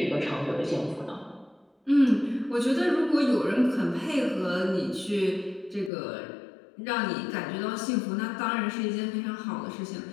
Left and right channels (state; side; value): drops out; right; at 5.9 s